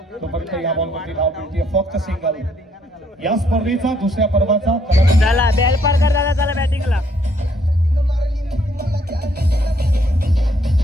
तोपर्यंत या बॉल वरती धाव मिळते फक्त सिंगल. या स्पर्धेचा दुसऱ्या पर्वाचा झाला. बॅल पार कर दादा, चला बॅटिंगला.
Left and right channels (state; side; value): normal; both; correlation 0.68